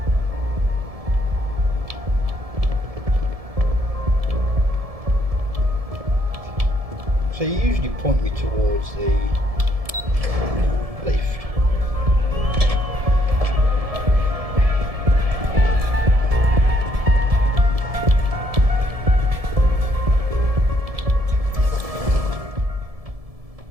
So you usually point me towards the lift.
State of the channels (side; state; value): left; late; 1.7 ms